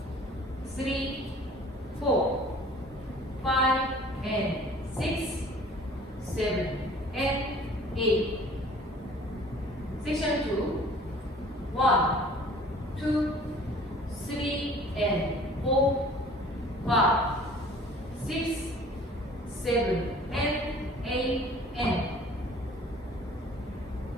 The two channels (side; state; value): both; normal; correlation 0.50